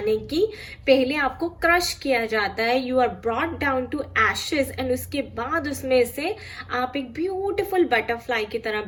कि पहले आपको क्रश किया जाता है, you are brought down to ashes, and उसके बाद उसमें से आप एक ब्यूटिफुल बटरफ्लाई की तरह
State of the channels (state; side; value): identical; both; correlation 1.00